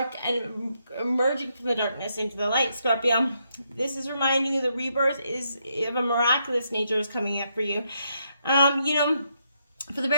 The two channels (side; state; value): both; inverted; correlation -0.78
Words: and emerging from the darkness into the light, Scorpio. This is reminding you the rebirth is of a miraculous nature is coming up for you. For the